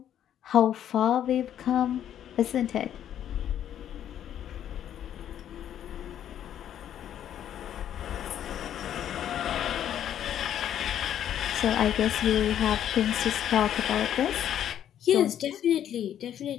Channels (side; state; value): right; quieter; 10.4 dB